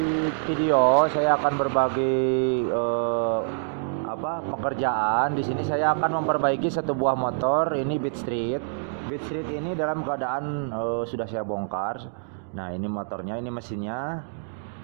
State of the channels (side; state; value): left; silent; digital silence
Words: video, saya akan berbagi pekerjaan. Di sini saya akan memperbaiki satu buah motor, ini Beat Street. Beat Street ini dalam keadaan sudah saya bongkar. Nah, ini motornya, ini mesinnya.